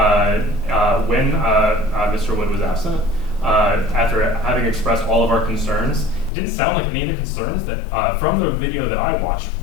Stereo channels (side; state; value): right; drops out; at 6.3 s